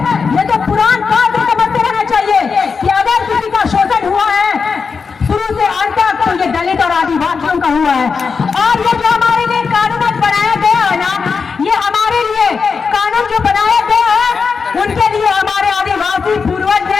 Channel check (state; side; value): quieter; right; 5.3 dB